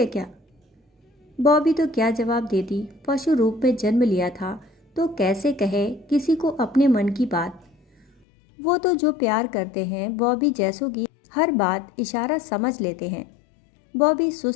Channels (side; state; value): right; drops out; at 8.1 s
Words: क्या? बॉबी तो क्या जवाब देती, पशु रूप में जन्म लिया था तो कैसे कहे किसी को अपने मन की बात। वो तो जो प्यार करते हैं बॉबी जैसों की हर बात इशारा समझ लेते हैं। बॉबी